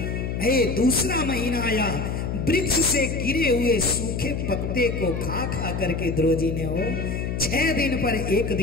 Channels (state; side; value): noise; left; hum, 3 dB below the sound